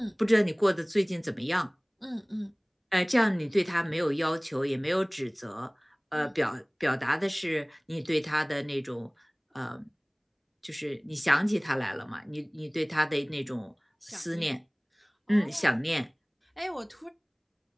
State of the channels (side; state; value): both; identical; correlation 1.00